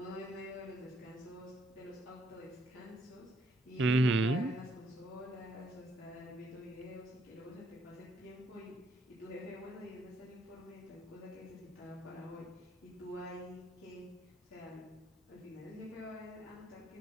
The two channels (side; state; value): both; normal; correlation 0.71